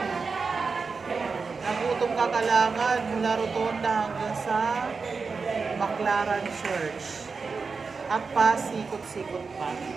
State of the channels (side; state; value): left; quieter; 4.8 dB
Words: Nagutom kakalangan mula Rotonda hanggang sa Baclaran Church. At pasikot-sikot pa.